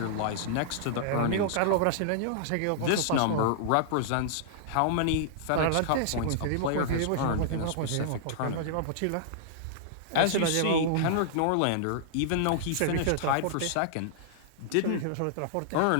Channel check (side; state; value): both; different; correlation -0.01